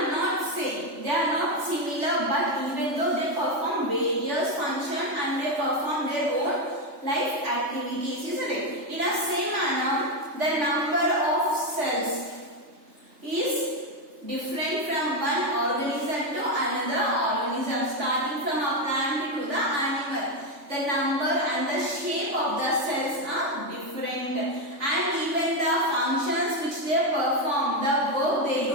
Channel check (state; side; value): late; left; 3.3 ms